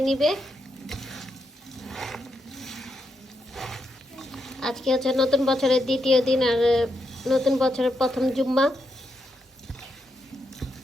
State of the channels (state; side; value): normal; both; correlation 0.82